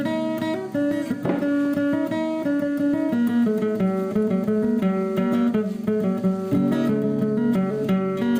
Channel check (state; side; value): identical; both; correlation 1.00